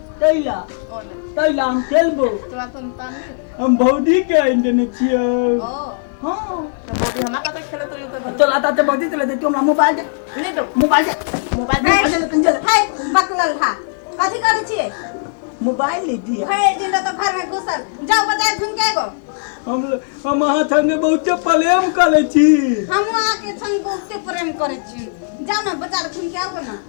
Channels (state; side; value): silent; right; digital silence